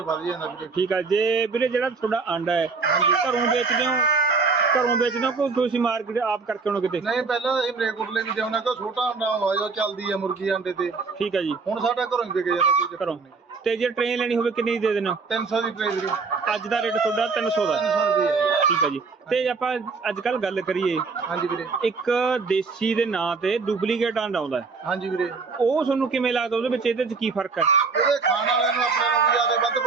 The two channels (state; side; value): quieter; left; 4.5 dB